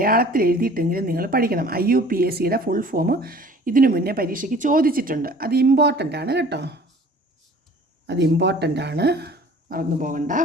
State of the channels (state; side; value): normal; both; correlation 0.49